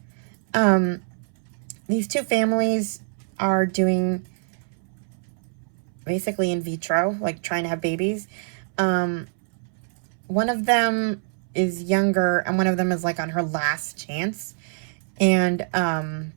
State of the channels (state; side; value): silent; left; 62 dB below the other